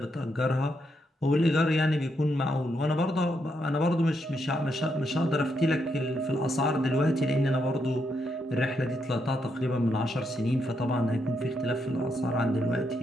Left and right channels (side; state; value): both; normal; correlation 0.79